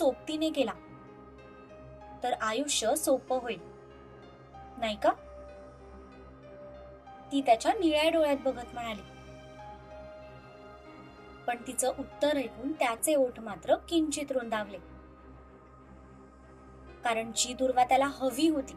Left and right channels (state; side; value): identical; both; correlation 1.00